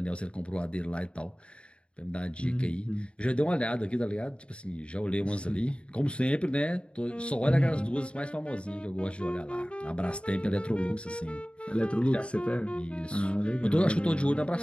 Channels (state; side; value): late; right; 0.057 ms